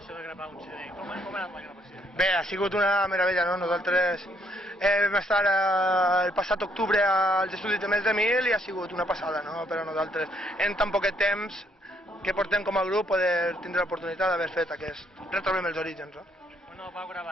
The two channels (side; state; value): both; normal; correlation 0.70